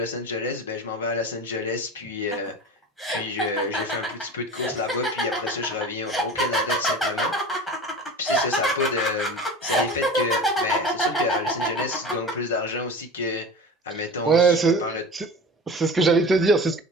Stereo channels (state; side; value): normal; both; correlation 0.34